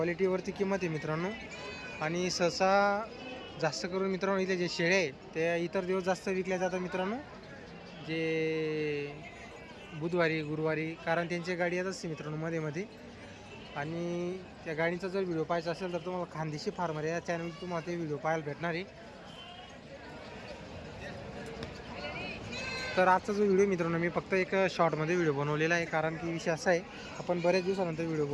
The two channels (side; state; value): both; identical; correlation 1.00